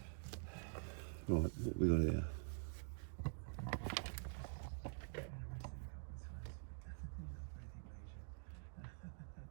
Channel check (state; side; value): silent; left; digital silence